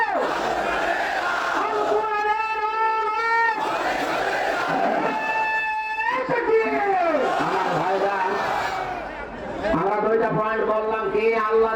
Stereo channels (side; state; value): both; identical; correlation 1.00